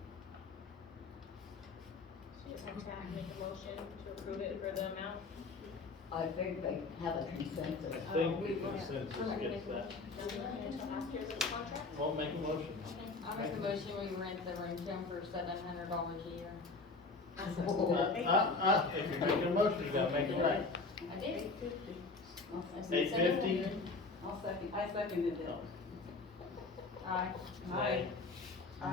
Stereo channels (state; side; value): quieter; right; 3.8 dB